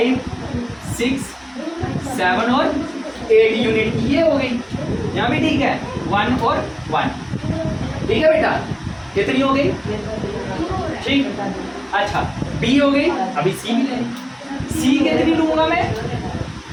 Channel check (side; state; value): both; identical; correlation 1.00